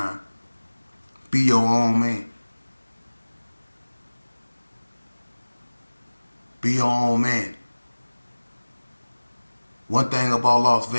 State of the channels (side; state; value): both; inverted; correlation -1.00